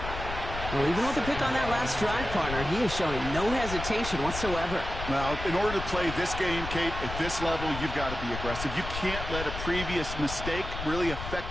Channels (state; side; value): noise; left; rumble, 7 dB below the sound